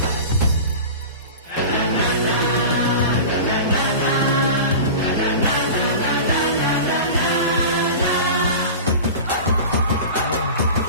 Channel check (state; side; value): inverted; both; correlation -0.33